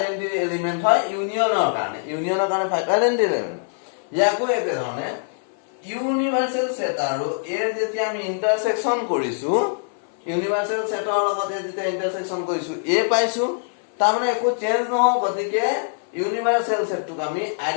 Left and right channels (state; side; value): silent; right; 58 dB below the other